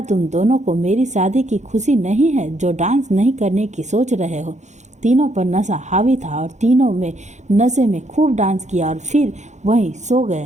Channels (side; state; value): left; late; 0.34 ms